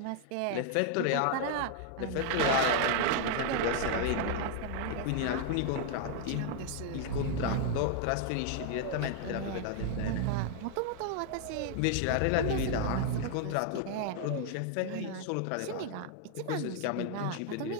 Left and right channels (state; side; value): different; both; correlation 0.00